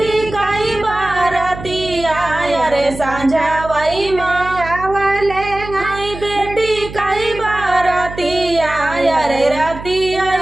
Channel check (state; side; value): noise; right; hum, 12 dB below the sound